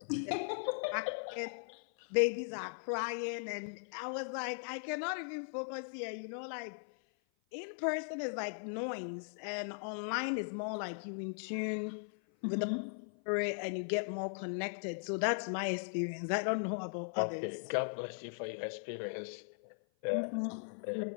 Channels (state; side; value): silent; right; 52 dB below the other